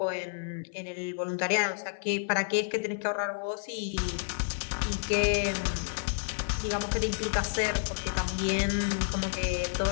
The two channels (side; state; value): right; silent; 58 dB below the other